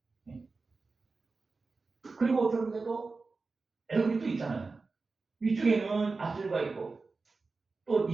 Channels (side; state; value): left; quieter; 4.0 dB